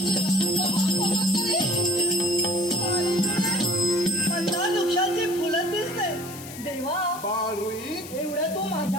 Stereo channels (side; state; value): left; noise; hiss, 14 dB below the sound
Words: मंदार वृक्षाची फुलं दिसते. देवा बाळरोही, एवढं तू